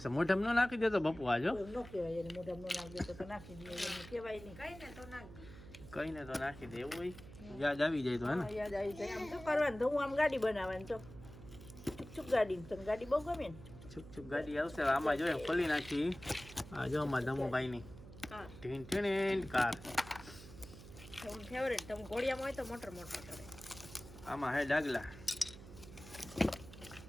મોઢામાં ન નાખી દેતો બપુ આજો ન કહેવાય એને મોઢામાં ન નાખી દેતો તો નાખી દે એને કહેવાય નહીં કઈને તો નાખી દે એવું હોય યાદ આવી જાય તો હે ને હા, યાદ આવી જાય આમ તો કરવાનું તો હું આમ ગાડી બનાવવાની તો ચૂપ ગાડી તને ગાડી બહુ ગમે ને છુક છુક ગાડી આવશે આમાં જોઈએ ખોલી નાખી આ જો અમારા ધમુભાઈની ટીન ટીન કાર તમે ફેવરેટ તમે ઘોડિયામાં હોય તો મોટર મોટર કરે આમાં હે ડાગલા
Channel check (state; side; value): noise; right; hum, 16 dB below the sound